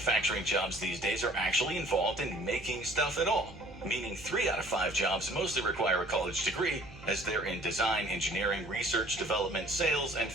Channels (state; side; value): noise; right; hum, 18 dB below the sound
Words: jobs these days are actually involved in making stuff at all, meaning 3 out of 5 jobs mostly require a college degree, as they're in design, engineering, research, development, sales, and